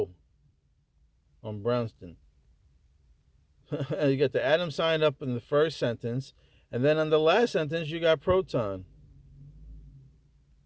on Brownston. You got the atom sign up in the first sentence, and then on the last sentence you got proton.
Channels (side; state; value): both; identical; correlation 1.00